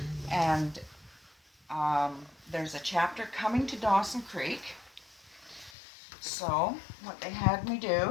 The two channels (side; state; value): right; drops out; at 5.8 s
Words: and there's a chapter coming to Dawson Creek. So what they had me